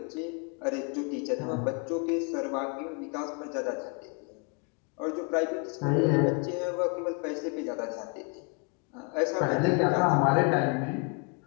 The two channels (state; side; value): quieter; right; 33.8 dB